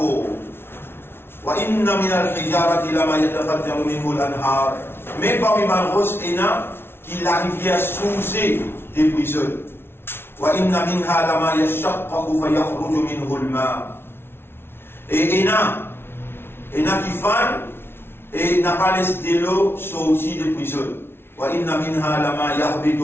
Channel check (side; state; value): right; late; 0.11 ms